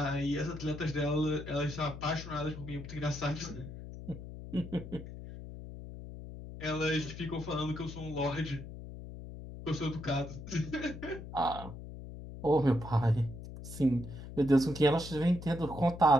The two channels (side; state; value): left; noise; hum, 11 dB below the sound